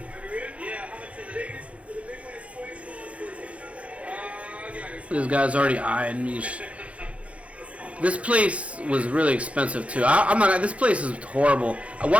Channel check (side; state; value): left; late; 0.063 ms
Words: This guy's already eyeing me. This place was really expensive too. I'm not. This place is horrible.